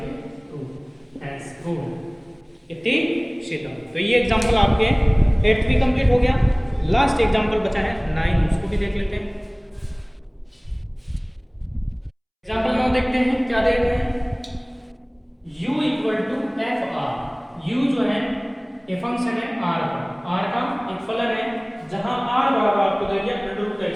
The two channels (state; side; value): identical; both; correlation 1.00